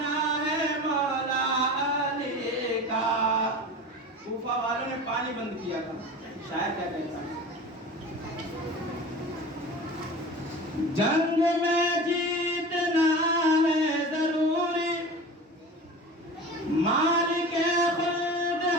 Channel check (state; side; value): normal; both; correlation 0.34